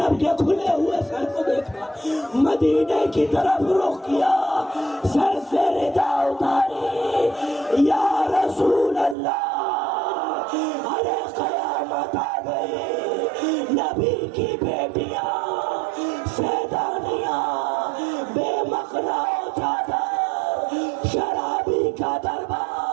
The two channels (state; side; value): drops out; left; at 9.2 s